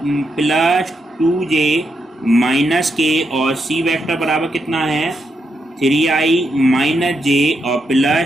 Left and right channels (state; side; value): normal; both; correlation 0.82